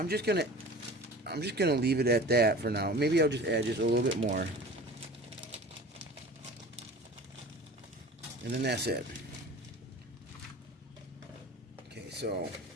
just gonna leave it at that for now. Maybe I'll just add just a little bit more. And then that's it. Okay, so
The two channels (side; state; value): both; normal; correlation 0.39